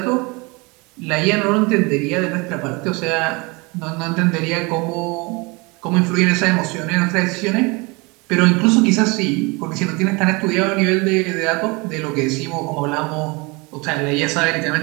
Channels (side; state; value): left; quieter; 27.0 dB